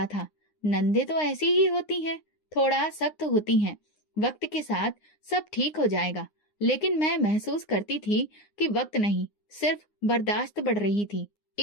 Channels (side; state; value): right; late; 9.7 ms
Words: था, नंदे तो ऐसी ही होती हैं, थोड़ा सख्त होती हैं, वक्त के साथ सब ठीक हो जाएगा। लेकिन मैं महसूस करती थी कि वक्त नहीं, सिर्फ बर्दाश्त बढ़ रही थी।